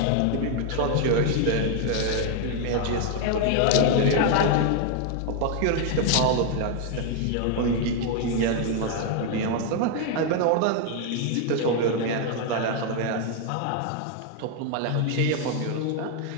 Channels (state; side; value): different; both; correlation 0.01